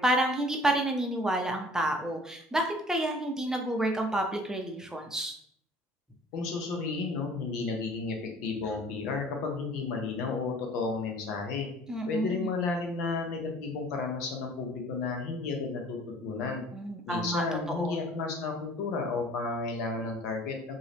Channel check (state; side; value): normal; both; correlation 0.50